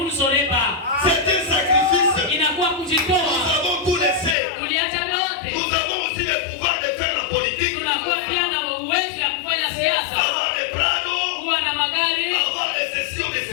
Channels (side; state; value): right; drops out; at 4.4 s